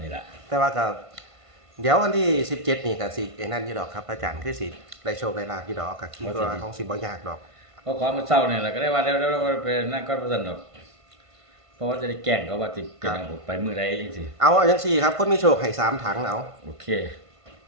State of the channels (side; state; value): left; late; 1.5 ms